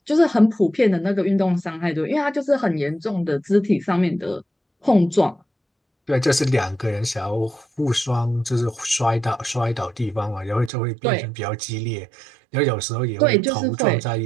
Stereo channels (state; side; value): drops out; left; at 10.7 s